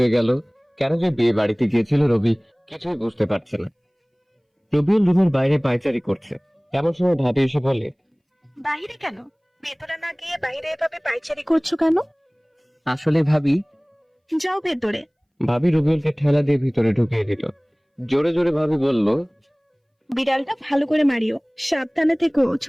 গেল, কেন যে বিয়ে বাড়িতে গিয়েছিল রবি কিছুই বুঝতে পারছে না। রবিউল রুমের বাইরে পায়চারি করছে। এমন সময় ভাবি এসে বলে, বাইরে কেন? ভেতরে না গিয়ে বাইরে এভাবে পাইচারি করছো কেন? আসলে ভাবি, যাও ভেতরে। ভাবি রবিউলকে ঠেলা দিয়ে ভিতরে ঢুকিয়ে দিল। জোরে জোরে ভাবি বলল, বিড়ালটা ভালো করে মারিও, সাবধানে থেকো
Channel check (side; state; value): both; identical; correlation 1.00